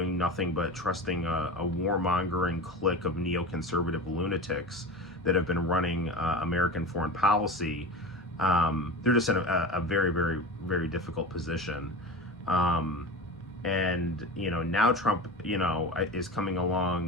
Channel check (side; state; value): both; normal; correlation 0.29